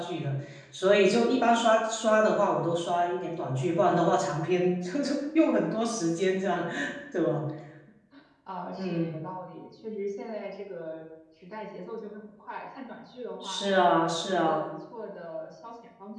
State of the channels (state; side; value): identical; both; correlation 1.00